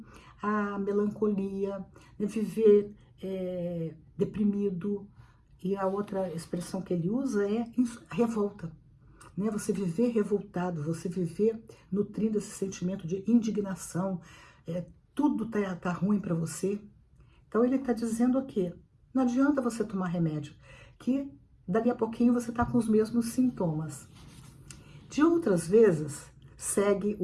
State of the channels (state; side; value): identical; both; correlation 1.00